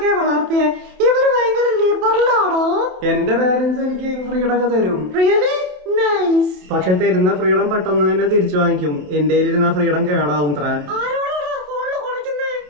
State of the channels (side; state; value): left; late; 28 ms